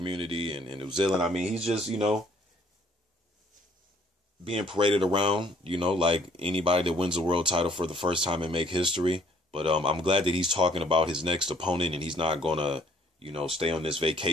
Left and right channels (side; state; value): both; normal; correlation 0.61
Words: and New Zealand. I mean, he's just, being paraded around, like anybody that wins a world title for the first time and make history. But I'm glad that he's talking about his next opponent, and he's not going to, stay on this